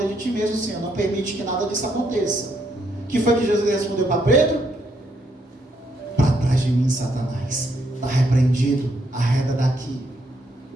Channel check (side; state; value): both; normal; correlation 0.74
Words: de ti mesmo, Senhor, não permite que nada disso aconteça. O que foi que Jesus respondeu para Pedro? De mim, Satanás, está repreendido, arreda daqui.